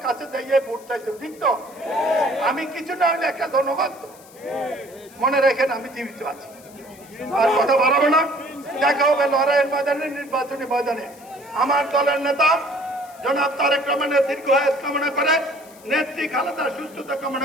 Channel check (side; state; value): left; noise; hiss, 24 dB below the sound